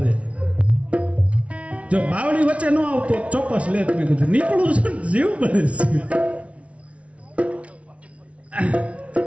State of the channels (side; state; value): left; late; 0.063 ms